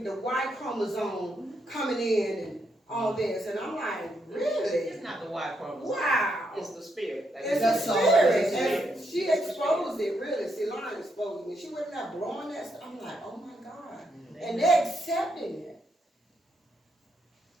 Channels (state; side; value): normal; both; correlation 0.79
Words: the Y chromosome coming in and all this. And I'm like, really? It's not the Y chromosome. Wow. It's the spirit. It's the spirit. And she exposed it, really. See, Lauren exposed me. She wasn't there blowing that stuff. I'm like, oh my God. And they're accepting it.